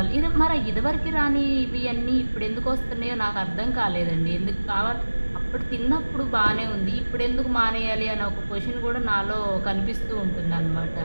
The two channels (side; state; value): both; inverted; correlation -1.00